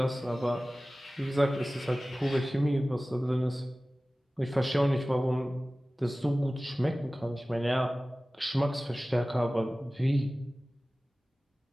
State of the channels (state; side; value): normal; both; correlation 0.97